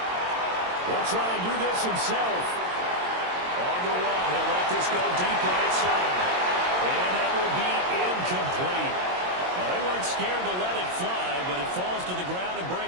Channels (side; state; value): left; late; 22 ms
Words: He'll try and do this himself. On the run, he'll let this go deep right side. And that will be incomplete. Well, they weren't scared to let it fly, but it falls to the ground and